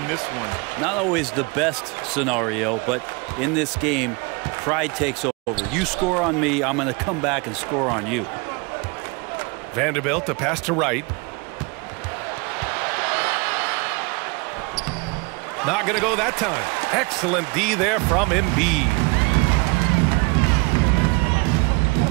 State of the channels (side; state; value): left; quieter; 28.7 dB